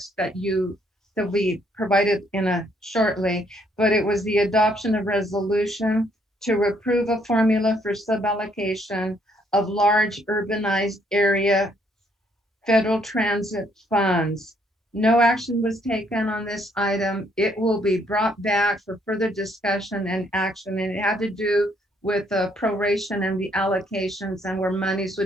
that we provided shortly, but it was the adoption of resolution to approve a formula for suballocation of large urbanized area federal transit funds. No action was taken on this item. It will be brought back for further discussion and action, and it had to do with the proration and the allocations and where monies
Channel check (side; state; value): both; normal; correlation 0.68